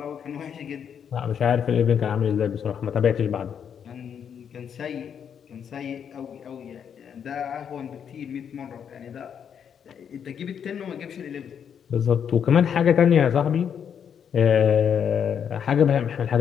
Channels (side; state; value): right; quieter; 7.9 dB